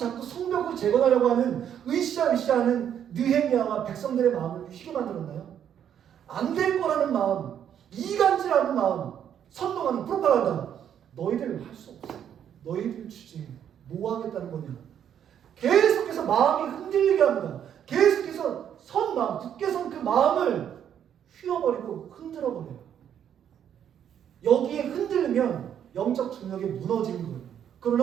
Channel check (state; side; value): quieter; left; 9.3 dB